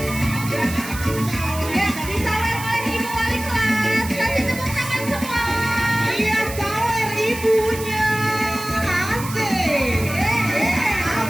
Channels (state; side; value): noise; right; hiss, 11 dB below the sound